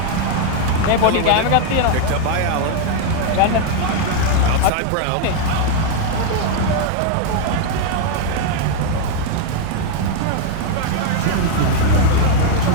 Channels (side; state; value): both; different; correlation 0.00